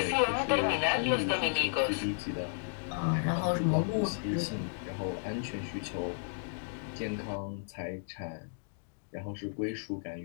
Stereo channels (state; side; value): silent; right; digital silence